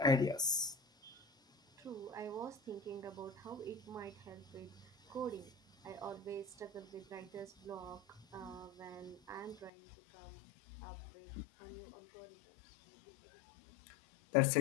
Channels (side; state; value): right; drops out; at 9.7 s